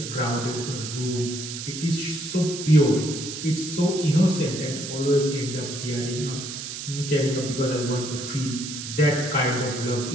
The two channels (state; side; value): noise; right; hiss, 8 dB below the sound